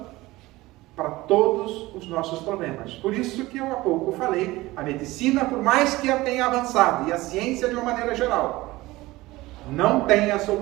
para todos os nossos problemas. Por isso que eu há pouco falei, a medicina, por mais que ela tenha avançado, e a ciência de uma maneira geral, não tem a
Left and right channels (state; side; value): quieter; left; 19.2 dB